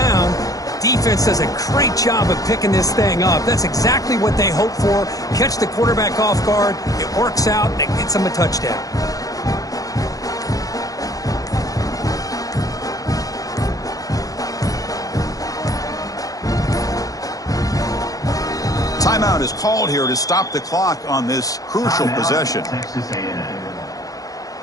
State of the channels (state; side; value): late; right; 0.17 ms